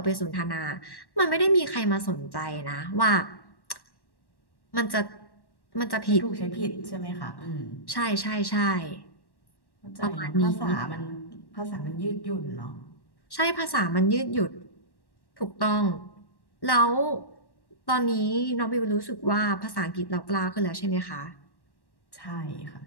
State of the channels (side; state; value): right; late; 1.1 ms